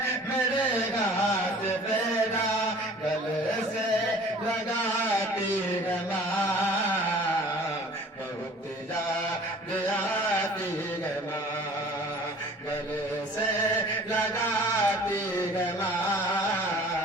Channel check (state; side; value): normal; both; correlation 0.48